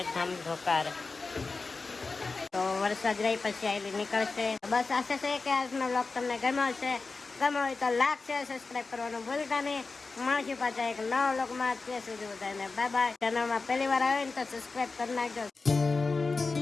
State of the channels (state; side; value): quieter; right; 4.0 dB